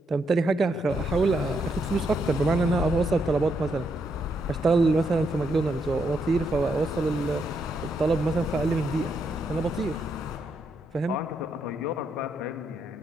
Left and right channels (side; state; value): both; normal; correlation 0.78